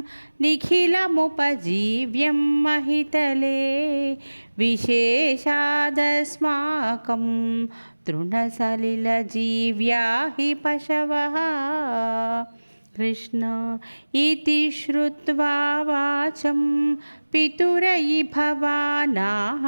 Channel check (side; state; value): both; inverted; correlation -1.00